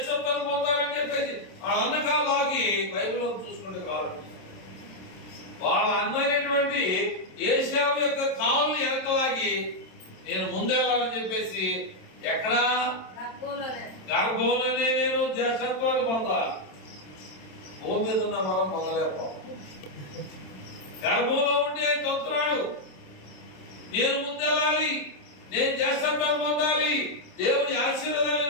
పొందాలని చెప్పేసి వాళ్ళ అన్న కాళ్ళకి బైబిల్లో చూసుకుంటే కావాలండి. వాళ్ళ అన్న అయినటువంటి ఏశావు యొక్క కాళ్ళని వెనకలాగి నేను ముందెళ్ళాలని చెప్పేసి ఎక్కడ గర్భంలోనే నేను జ్యేష్ఠత్వాన్ని పొందాలి. భూమి మీద ఉన్న మనం పొందలేకపో. గర్భంలో ఉండి ఆయన తొంతున్నాడు, నేను ముందెళ్ళాలి, నేను జ్యేష్ఠత్వాన్ని పొందాలి, దేవుని ఆశీర్వాదాలు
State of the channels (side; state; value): right; late; 27 ms